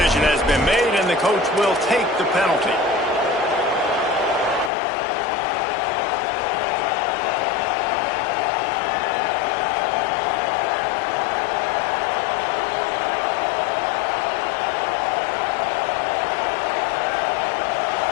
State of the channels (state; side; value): drops out; right; at 4.7 s